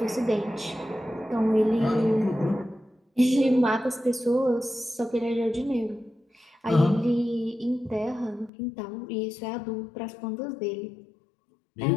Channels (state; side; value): drops out; right; at 8.5 s